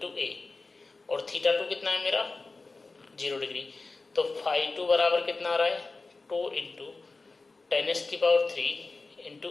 a, और थीटा 2 कितना है मेरा 0 डिग्री। तो φ2 बराबर कितना आ रहा है 2 into 10⁻³ into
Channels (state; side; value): quieter; right; 3.7 dB